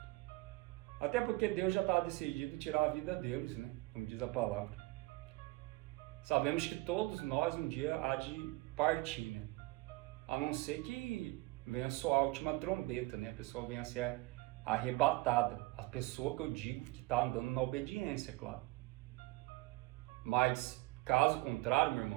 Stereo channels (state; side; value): quieter; left; 21.2 dB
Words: Até porque Deus já estava decidido tirar a vida deles, né? Como diz a palavra. Sabemos que todos nós um dia há de partir, né? A não ser que venha soar a última trombeta, né? A pessoa venha a ser arrebatada. A pessoa que eu digo que está andando na obediência, claro. Mas, caso contrário, meu